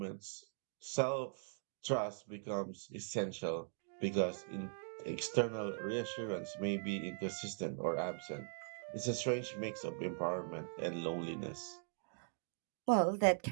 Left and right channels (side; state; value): left; silent; digital silence